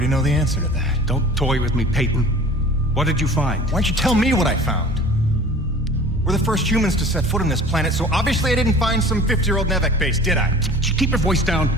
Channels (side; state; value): both; normal; correlation 0.44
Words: know the answer to that. Don't toy with me, Peyton. What did you find? Why don't you tell me what I found? We're the first humans to set foot on this planet, so obviously I didn't find some 50-year-old Nevek base, did I? Keep your voice down.